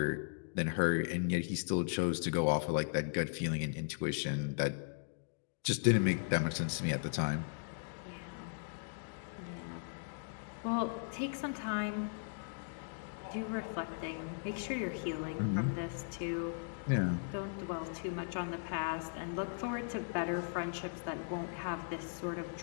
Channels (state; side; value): silent; right; digital silence